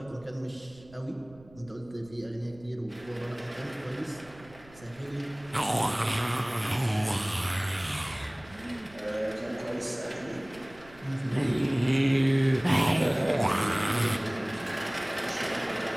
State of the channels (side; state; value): right; noise; rumble, 23 dB below the sound